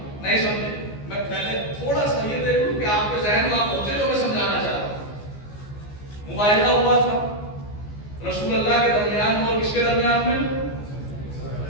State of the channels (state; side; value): late; right; 14 ms